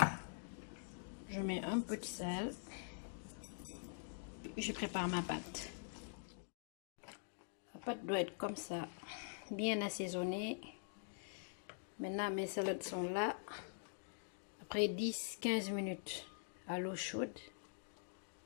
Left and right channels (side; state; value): right; silent; digital silence